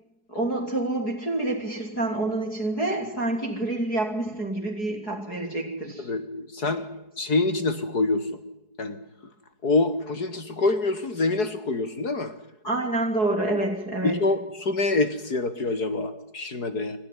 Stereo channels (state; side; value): late; right; 4.7 ms